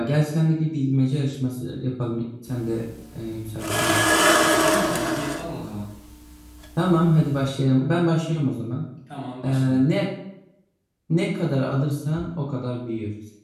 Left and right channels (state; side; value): identical; both; correlation 1.00